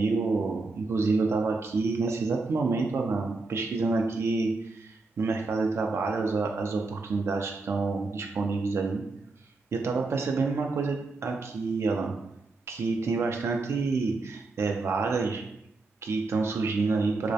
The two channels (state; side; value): quieter; left; 3.6 dB